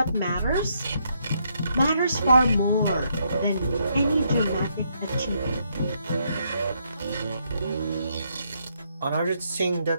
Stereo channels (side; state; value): both; inverted; correlation -0.75